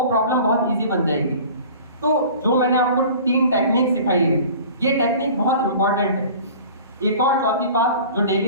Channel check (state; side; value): inverted; both; correlation -0.43